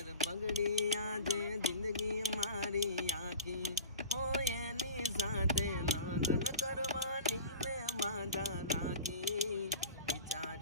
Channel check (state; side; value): inverted; both; correlation -0.37